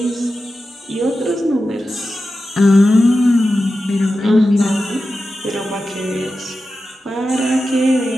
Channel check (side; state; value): both; normal; correlation 0.92